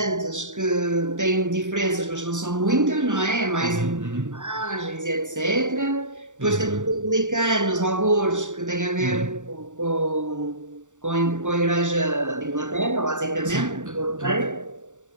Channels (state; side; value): late; left; 0.86 ms